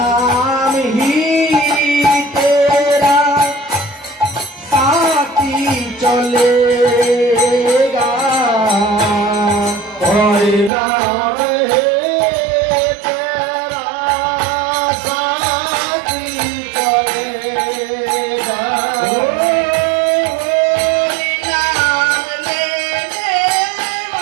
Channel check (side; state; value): left; drops out; at 10.7 s